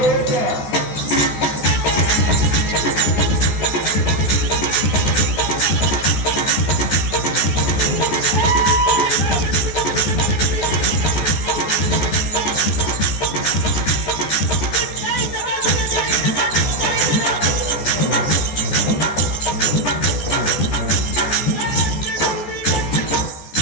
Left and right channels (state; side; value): late; right; 14 ms